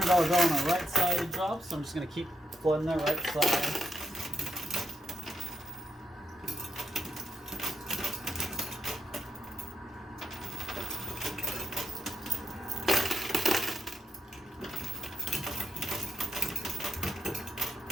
bill on the right side to drop, so I'm just going to keep flooding that right side.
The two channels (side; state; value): both; normal; correlation 0.83